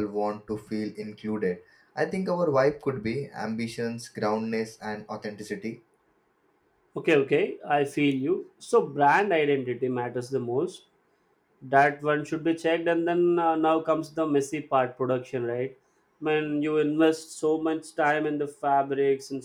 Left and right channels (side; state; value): both; identical; correlation 1.00